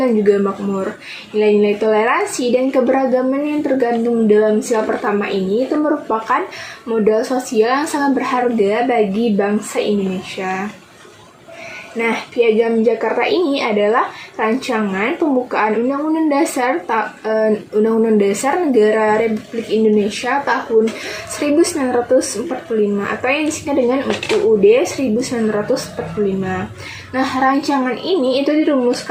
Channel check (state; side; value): identical; both; correlation 1.00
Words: dan juga makmur. Nilai-nilai toleransi dan keberagaman yang tergandung dalam sila pertama ini itu merupakan modal sosial yang sangat berharga bagi bangsa Indonesia. Nah, Piagam Jakarta ini adalah rancangan pembukaan Undang-Undang Dasar Negara Republik Indonesia tahun 1945 atau yang disingkat dengan UUD 1945. Nah, rancangan ini itu